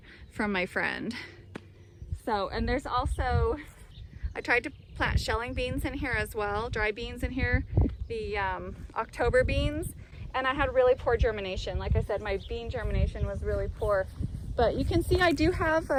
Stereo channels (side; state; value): both; identical; correlation 1.00